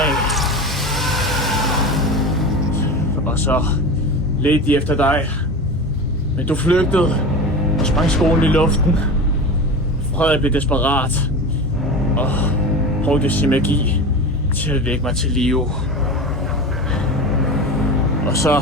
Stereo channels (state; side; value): normal; both; correlation 0.28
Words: Og så ledte de efter dig. Men du flygtede og sprang skolen i luften. Frederik blev desperat og brugte sin magi til at vække mig til live. Og så